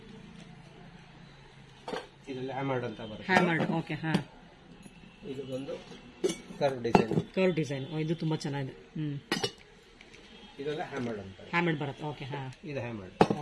ಇದರಲ್ಲಿ ಹ್ಯಾಮರ್ಡ್ ಅಂತ ಬರುತ್ತೆ. ಹ್ಯಾಮರ್ಡ್. ಓಕೆ. ಇದು ಒಂದು ಕರ್ವ್ ಡಿಸೈನ್. ಇದು ತುಂಬಾ ಚೆನ್ನಾಗಿದೆ. ಇದೆಲ್ಲ ಹ್ಯಾಮರ್ಡ್ ಅಂತ. ಹ್ಯಾಮರ್ಡ್ ಬರುತ್ತೆ. ಓಕೆ. ಇದು ಹ್ಯಾಮರ್ಡ್.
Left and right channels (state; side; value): identical; both; correlation 1.00